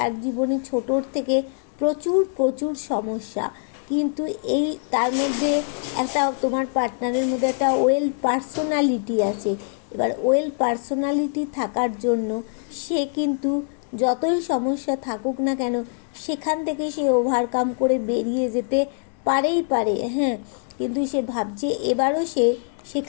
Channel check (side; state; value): right; silent; 63 dB below the other